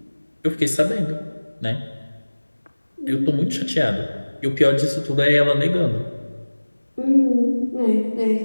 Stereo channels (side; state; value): both; inverted; correlation -1.00